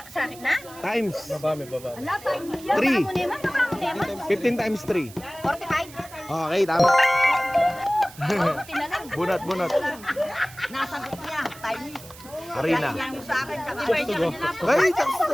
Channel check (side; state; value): right; noise; hiss, 19 dB below the sound